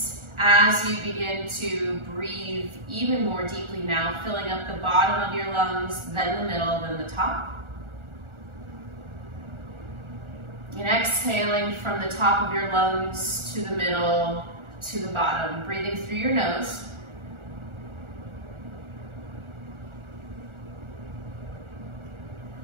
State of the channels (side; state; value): left; late; 1.4 ms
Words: as you begin to breathe even more deeply now, filling up the bottom of your lungs, then the middle, then the top. And exhaling from the top of your lungs to the middle, to the bottom, breathing through your nose.